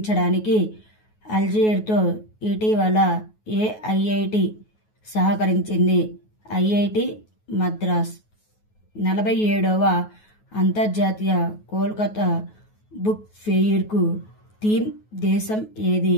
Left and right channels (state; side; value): late; right; 9.3 ms